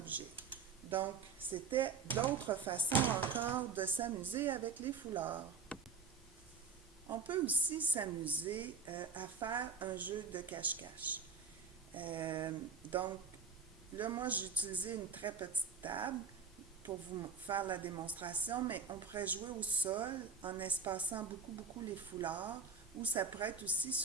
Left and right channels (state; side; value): quieter; left; 5.3 dB